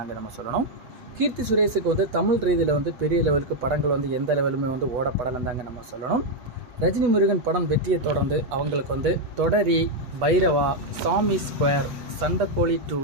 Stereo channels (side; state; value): left; late; 8.1 ms